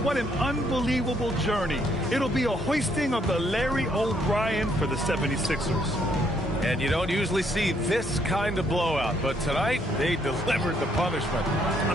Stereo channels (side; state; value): both; normal; correlation 0.70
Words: what an unbelievable journey. It'll be a hoisting of the Larry O'Brien for the 76ers. And you don't usually see this kind of blowout, but tonight they delivered the punishment.